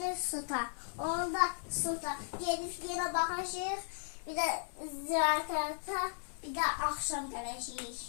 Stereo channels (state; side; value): silent; right; 54 dB below the other